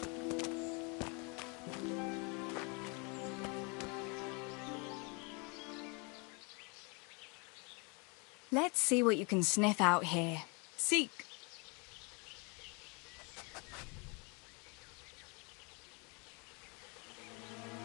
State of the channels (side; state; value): right; quieter; 32.0 dB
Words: Let's see what you can sniff out here. Seek.